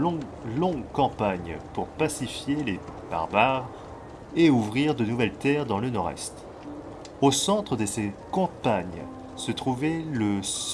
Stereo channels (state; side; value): identical; both; correlation 1.00